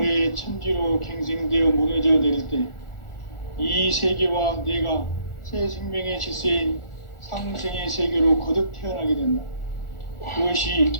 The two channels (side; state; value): right; late; 1.4 ms